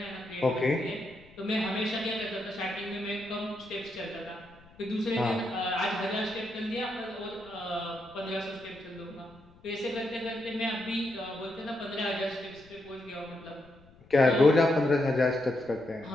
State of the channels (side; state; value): left; noise; rumble, 25 dB below the sound